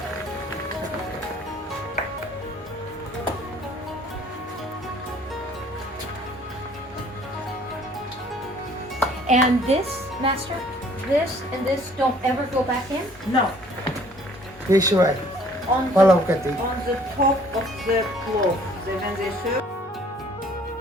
And this, Master, this and this don't ever go back in? No, This way. on Plov kati. the top of the plov, when they serve.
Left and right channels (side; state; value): both; normal; correlation 0.57